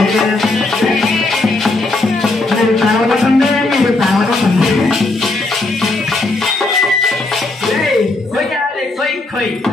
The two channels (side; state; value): right; quieter; 3.0 dB